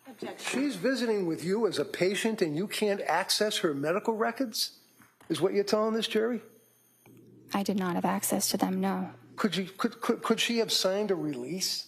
Objection. She's visiting with you as a patient and you can't access her medical records? Is what you're telling this jury? I did not have access to them, no. Could she have signed a release,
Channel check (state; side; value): identical; both; correlation 1.00